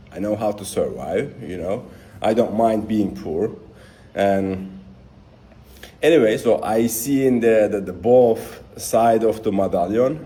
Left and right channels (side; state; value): both; identical; correlation 1.00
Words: I know how to survive, you know. I don't mind being poor. And anyway, so I see in the both side of the